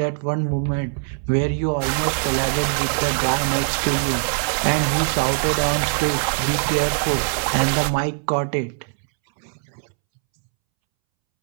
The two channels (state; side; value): silent; left; 64 dB below the other